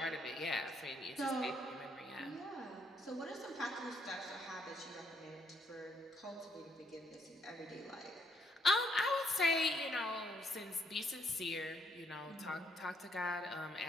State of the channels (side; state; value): both; normal; correlation 0.71